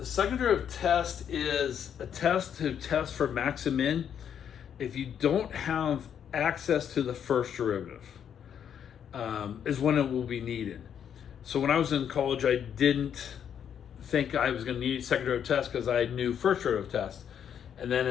second derivative test is a test to test for max and min if you don't have access to the first derivative, is when it will be needed. So when I was in college, I didn't think I was going to need second derivative test because I knew first derivative test. And then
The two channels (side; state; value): right; quieter; 8.6 dB